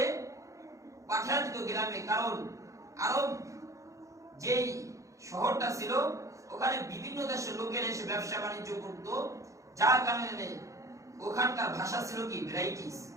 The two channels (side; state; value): left; late; 0.15 ms